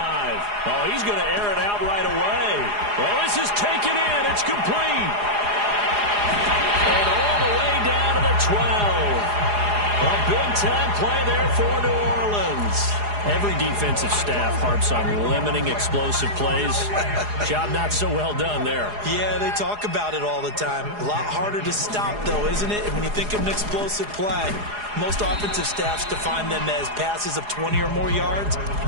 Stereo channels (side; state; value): left; late; 4.8 ms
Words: Oh, he's going to air it out right away. Well, this is taken in. It's complete. And all the way down to the 12. A big-time play there for New Orleans. Every defensive staff harps on limiting explosive plays. Job not so well done there. Yeah, they talk about it all the time. A lot harder to stop, though, isn't it? When you think of an explosive play, most offensive staffs define them as passes of 20 or more yards